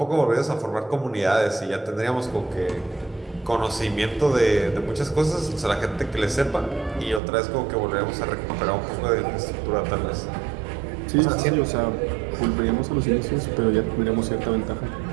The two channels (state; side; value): drops out; left; at 7.2 s